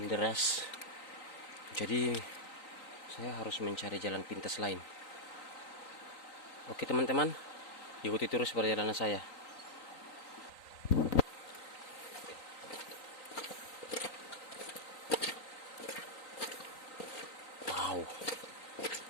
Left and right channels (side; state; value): right; late; 3.9 ms